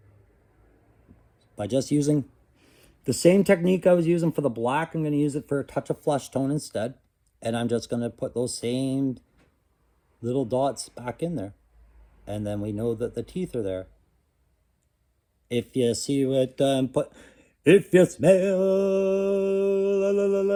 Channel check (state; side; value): identical; both; correlation 1.00